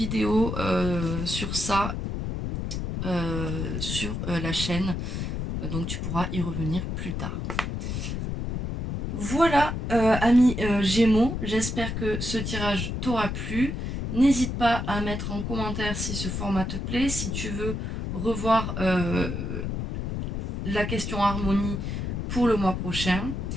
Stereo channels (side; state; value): left; noise; rumble, 3 dB below the sound